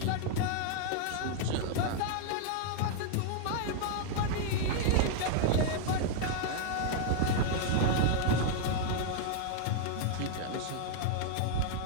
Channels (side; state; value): both; different; correlation 0.00